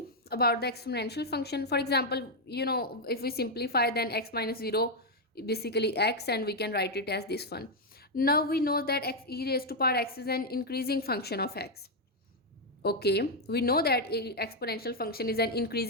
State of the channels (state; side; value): normal; both; correlation 0.01